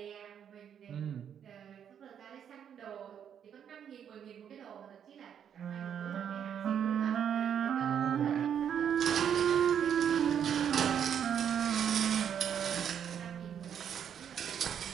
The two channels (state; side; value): quieter; left; 8.6 dB